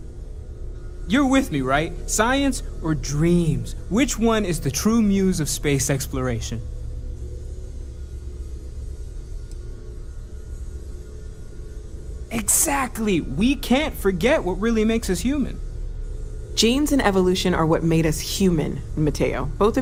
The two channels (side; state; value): both; identical; correlation 1.00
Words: You're with me, right? Science or dreams? Which one is the true muse of space exploration? Exactly! We can't forget what really makes us human. Genes and evolution are what made us human, Mateo. Both